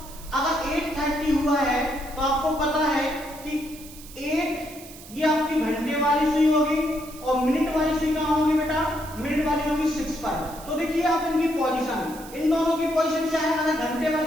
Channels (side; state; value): right; noise; hiss, 17 dB below the sound